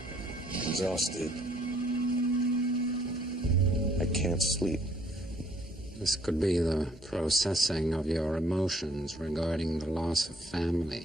Exhausted. I can't sleep. This could be the processing of your emotions regarding the loss of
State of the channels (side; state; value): both; normal; correlation 0.63